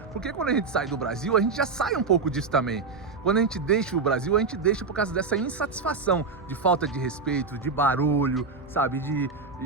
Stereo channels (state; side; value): quieter; left; 4.5 dB